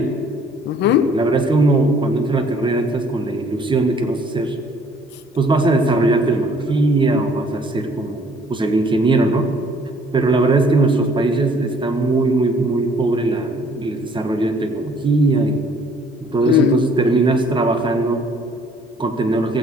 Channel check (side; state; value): both; normal; correlation 0.59